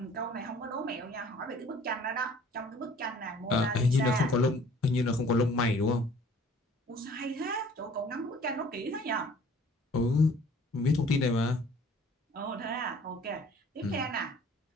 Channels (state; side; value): normal; both; correlation 0.52